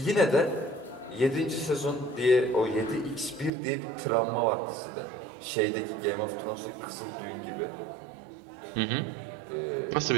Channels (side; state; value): left; drops out; at 3.5 s